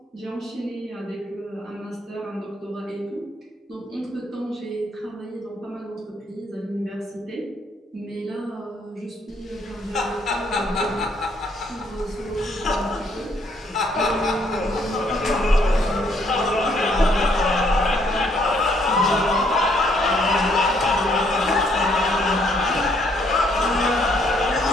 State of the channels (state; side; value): normal; both; correlation 0.68